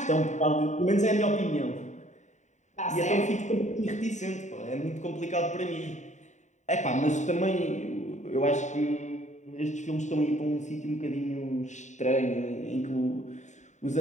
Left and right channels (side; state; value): right; late; 0.34 ms